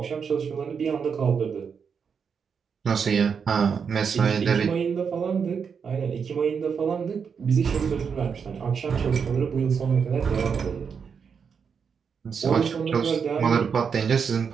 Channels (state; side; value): quieter; left; 6.4 dB